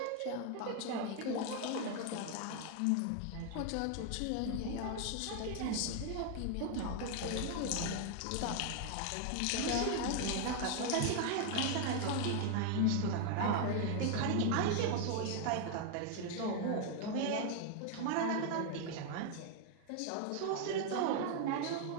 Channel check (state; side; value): different; both; correlation 0.00